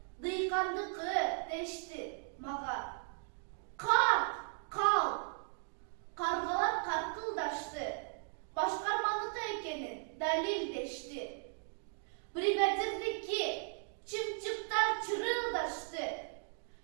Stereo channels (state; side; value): silent; left; 53 dB below the other